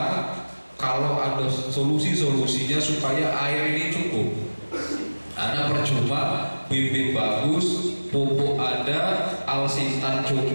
kalau ada solusi-solusinya supaya air ini cukup. Karena percuma bibit bagus, pupuk ada, alsintan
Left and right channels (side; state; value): both; inverted; correlation -1.00